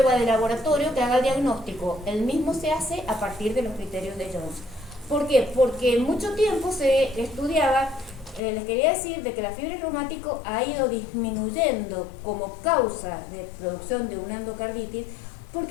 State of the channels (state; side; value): drops out; right; at 8.4 s